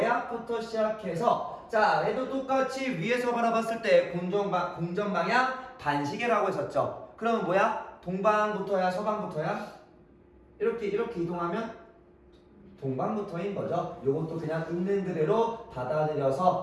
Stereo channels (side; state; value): both; identical; correlation 1.00